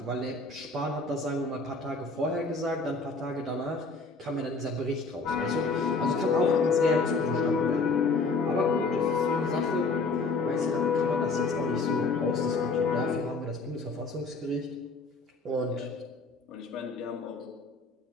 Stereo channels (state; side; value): quieter; right; 3.8 dB